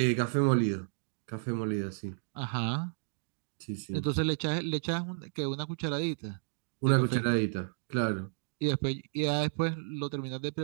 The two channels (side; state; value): left; silent; digital silence